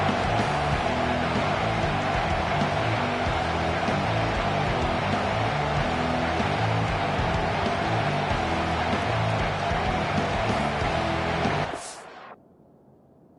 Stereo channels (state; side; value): identical; both; correlation 1.00